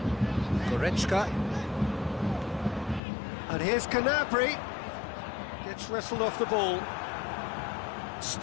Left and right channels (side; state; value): right; drops out; at 3.0 s